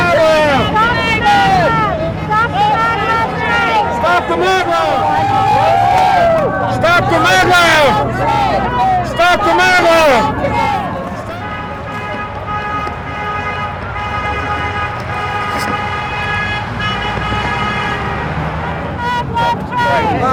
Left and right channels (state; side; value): identical; both; correlation 1.00